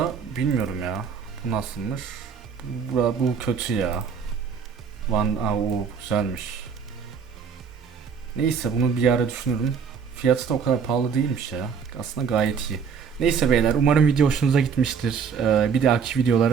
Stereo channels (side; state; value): left; quieter; 6.3 dB